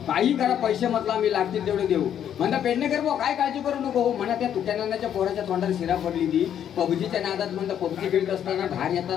काही करा, पैसे म्हटलं आम्ही लागतील तेवढे देऊ. म्हणता पेडणेकर भाऊ काय काळजी करू नको हो. म्हणा त्या तुट्यानाच्या पोराच्या तोंडात शिरा पडली ती पबजीच्या नादात. म्हणता पबजी खेळत असताना बाहेर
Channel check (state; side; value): quieter; right; 9.6 dB